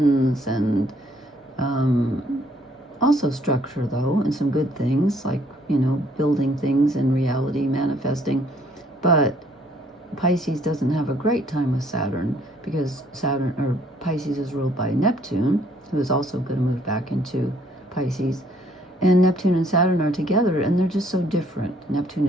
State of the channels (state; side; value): normal; both; correlation 0.64